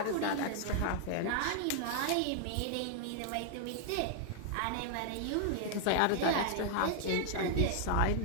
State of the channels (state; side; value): different; both; correlation 0.00